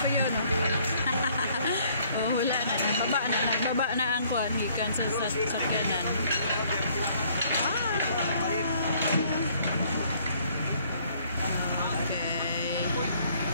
yun. Oh, wala na. Nagbaba na ang kuhan. Gikan sa sakyanan.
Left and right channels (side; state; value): both; inverted; correlation -0.62